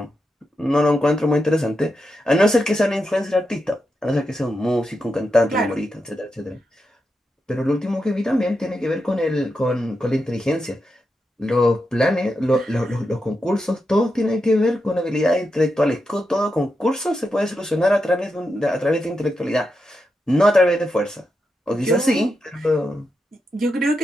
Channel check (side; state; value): both; normal; correlation 0.87